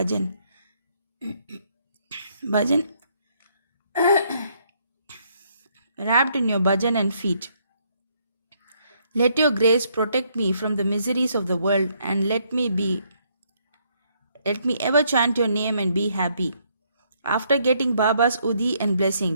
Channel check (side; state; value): both; inverted; correlation -0.71